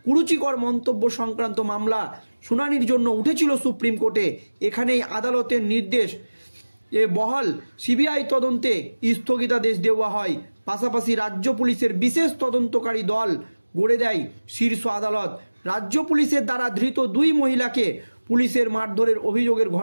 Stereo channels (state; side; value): inverted; both; correlation -1.00